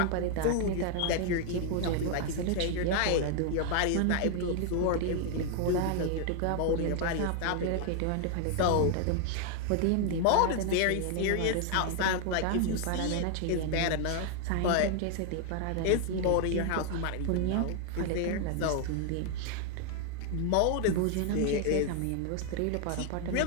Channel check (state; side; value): different; both; correlation 0.00